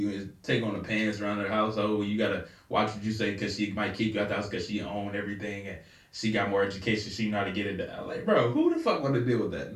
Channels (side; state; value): both; identical; correlation 1.00